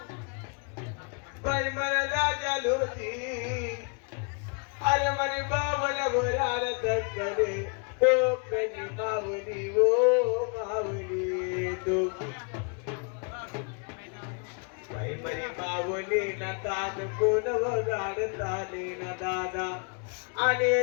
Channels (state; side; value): quieter; right; 37.5 dB